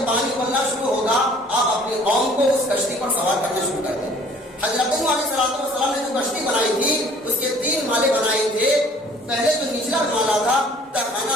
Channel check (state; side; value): normal; both; correlation 0.54